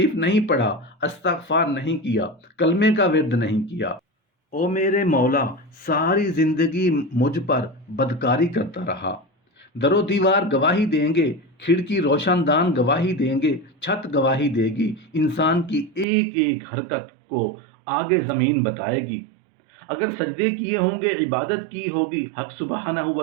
نہیں پڑھا، استغفار نہیں کیا، کلمے کا ورد نہیں کیا۔ او میرے مولا، ساری زندگی مجھ پر بدکاری کرتا رہا۔ در و دیوار گواہی دیں گے، کھڑکی روشن دان گواہی دیں گے، چھت گواہی دے گی، انسان کی ایک ایک حرکت کو آگے زمین بتائے گی۔ اگر سجدے کیے ہوں گے، عبادت کی ہوگی، حق سبحانہ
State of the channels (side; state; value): left; drops out; at 16.1 s